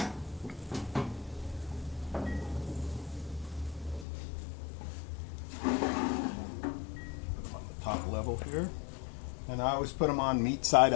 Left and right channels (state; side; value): drops out; right; at 4.0 s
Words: Put them on the top level here. And I always put them on meat side